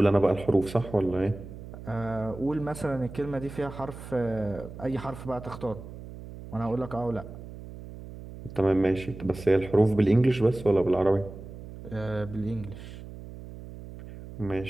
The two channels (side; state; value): right; noise; hum, 13 dB below the sound